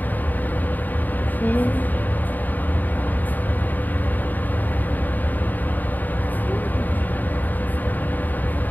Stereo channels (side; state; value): right; late; 0.086 ms